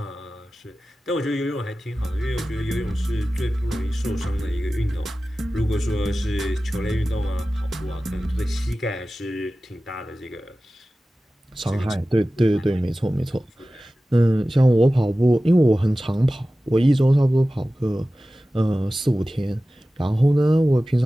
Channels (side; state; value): both; normal; correlation 0.96